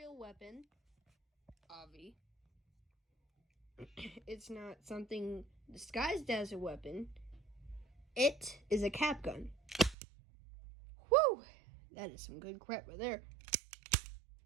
weapon. Obvi. It's not something disguised as a weapon. It is a cap gun. Whew! That is some good crap right there.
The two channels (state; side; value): drops out; left; at 10.0 s